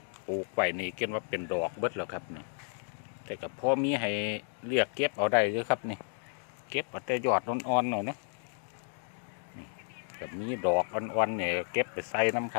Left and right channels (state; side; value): silent; right; digital silence